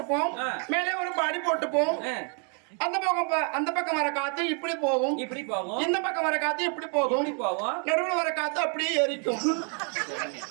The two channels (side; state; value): left; quieter; 39.2 dB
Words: மேலே ஒரு பாடி போட்டுப்போம். அந்த பக்கம் வர காத்து இப்படி போகும், இப்படி போகும். இந்த பக்கம் வர காத்து இப்படி போகும், இப்படி போகும். நடுவுல வர காத்து அப்படியே எரிக்கும்.